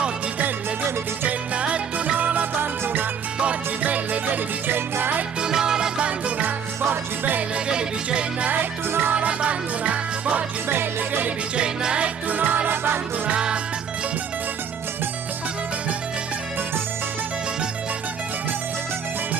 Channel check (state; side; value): quieter; left; 7.1 dB